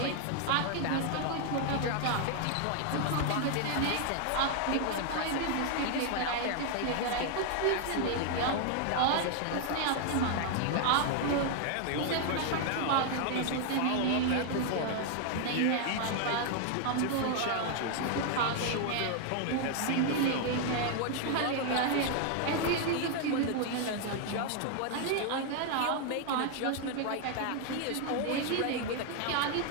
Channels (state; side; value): different; both; correlation 0.00